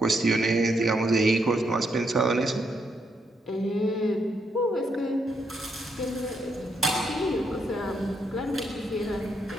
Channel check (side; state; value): both; normal; correlation 0.77